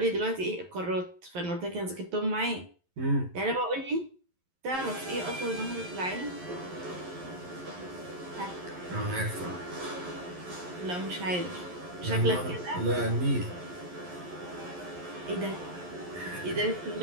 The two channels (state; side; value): late; left; 11 ms